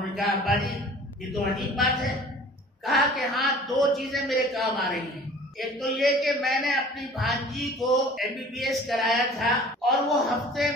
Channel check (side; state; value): both; normal; correlation 0.47